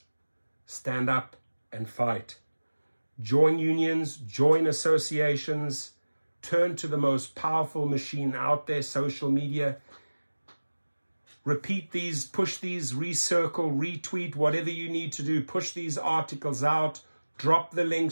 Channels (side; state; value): both; inverted; correlation -1.00